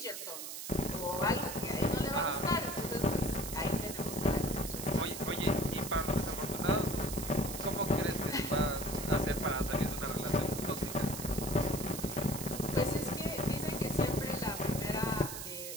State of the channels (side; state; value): right; noise; hiss, 7 dB below the sound